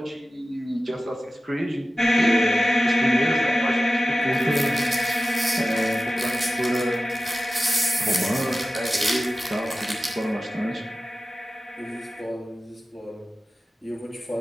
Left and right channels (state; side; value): normal; both; correlation 0.95